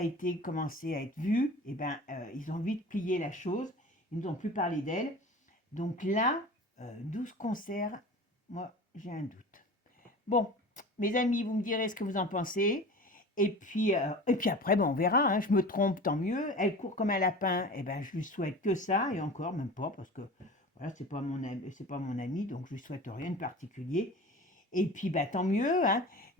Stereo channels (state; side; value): normal; both; correlation 0.36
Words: été commencé à être vu, eh ben, ils ont vite plié la chose. Ils nous ont plus parlé d'elle. Donc là, 12 concerts, moi, j'ai un doute. Bon, mes amis, vous me direz ce que vous en pensez. Et puis après, ben, on verra. Hein. Je me trompe, tant mieux. Elle court comme un lapin. Eh ben, je lui souhaite que ça. Et encore, même pas, parce que voilà, c'est pas mon ami, donc je lui souhaite rien de particulier. Et puis, bah, tant mieux. Hein.